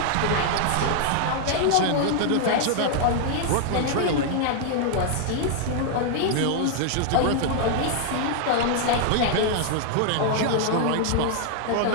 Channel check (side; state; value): both; different; correlation 0.00